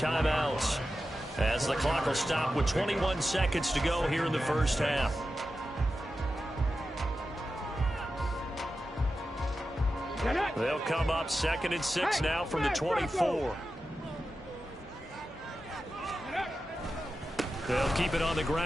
as the clock will stop with 21 seconds to go here in the first half. They'll come up 2nd and 6 now from the 24. They'll keep it on the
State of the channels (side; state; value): both; normal; correlation 0.92